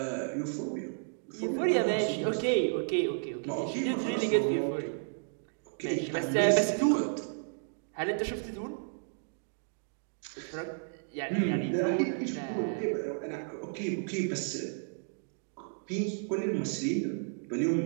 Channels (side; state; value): left; silent; digital silence